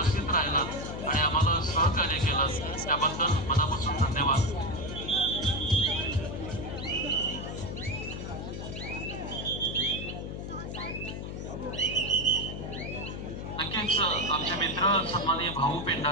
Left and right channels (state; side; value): noise; left; hum, 7 dB below the sound